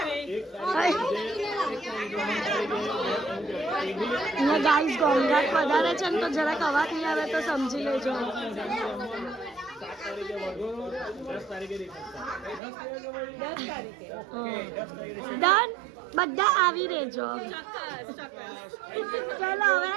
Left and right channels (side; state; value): left; drops out; at 12.6 s